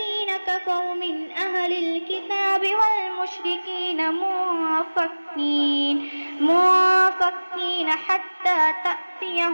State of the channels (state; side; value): inverted; both; correlation -1.00